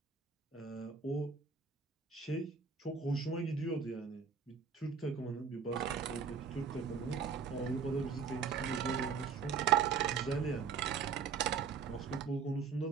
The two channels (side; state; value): left; quieter; 5.9 dB